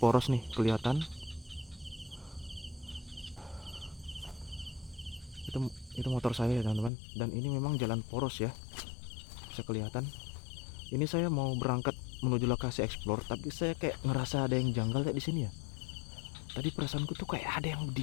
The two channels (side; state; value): right; drops out; at 6.9 s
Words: nih, kelihatan. Itu motor saya ya, teman-teman. Dan ini memang jalan poros ya, bisa kelihatan. Ini saya mau berangkat menuju lokasi explore, tapi saya kayak ngerasa ada yang janggal kayak di sini ya. Tadi perasaanku tuh kayak ada yang